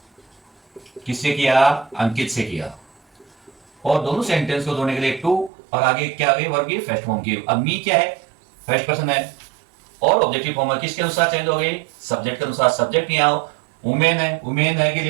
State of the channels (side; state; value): left; drops out; at 5.5 s